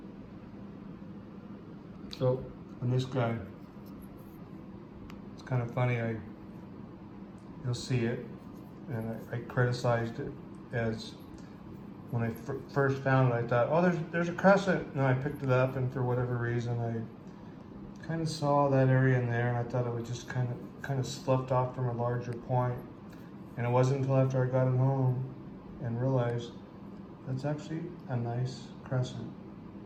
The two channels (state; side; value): identical; both; correlation 1.00